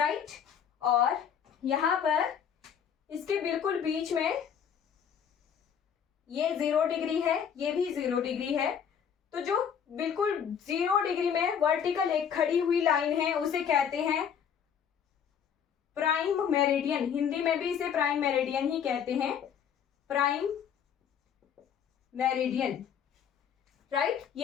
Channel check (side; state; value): right; quieter; 8.0 dB